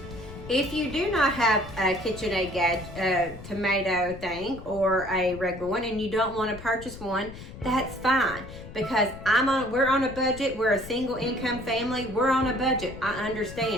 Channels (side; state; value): left; noise; rumble, 14 dB below the sound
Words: If you do not have a KitchenAid tomato thing or a regular one, and you don't want to purchase one, that's fine. Because we're on a budget. We're a single income family. We're on a budget. I